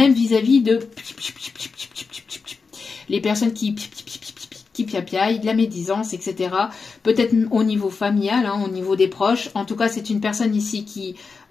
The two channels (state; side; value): quieter; right; 4.8 dB